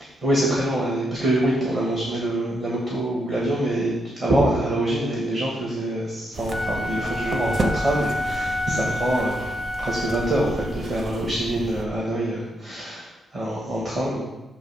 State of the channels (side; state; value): both; normal; correlation 0.79